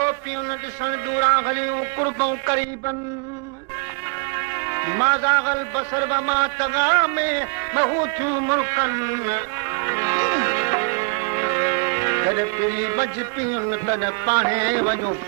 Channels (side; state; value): left; quieter; 36.6 dB